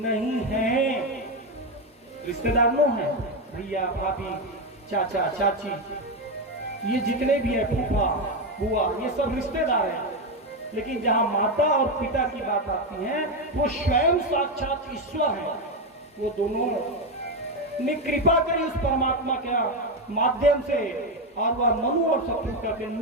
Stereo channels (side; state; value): both; normal; correlation 0.09